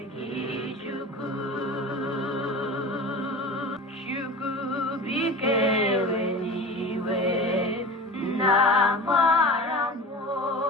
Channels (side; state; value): both; normal; correlation 0.33